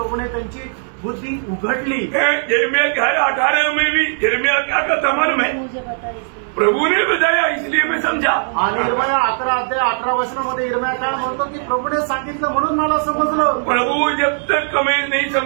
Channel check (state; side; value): silent; left; digital silence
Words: त्यांची बुद्धि उघडली. यिर्मयाह 18 में भी यिर्मयाह क्या कहता मालूम है? मुझे बता प्रभु ने बताया इसलिए मैं समझा. आणि यिर्मयाह 11 अध्याय 18 वचनामध्ये यिर्मयाह काय म्हणतो की प्रभूने सांगितलं म्हणून मला समजलं. प्रभु जब तक हमें नहीं